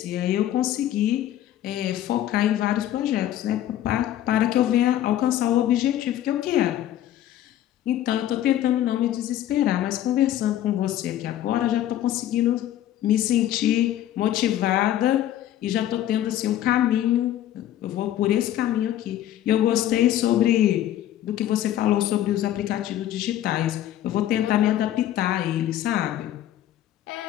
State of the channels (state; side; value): quieter; right; 12.3 dB